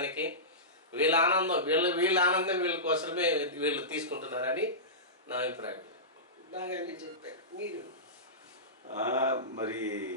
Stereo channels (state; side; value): normal; both; correlation -0.18